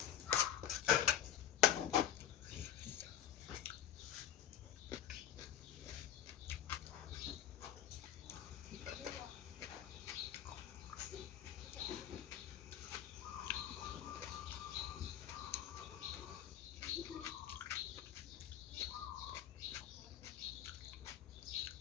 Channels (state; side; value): quieter; right; 10.5 dB